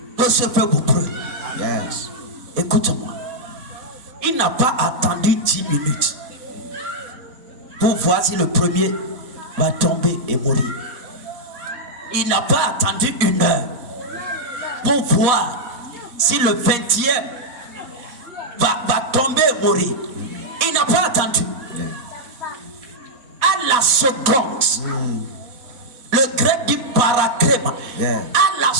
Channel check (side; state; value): left; late; 4.1 ms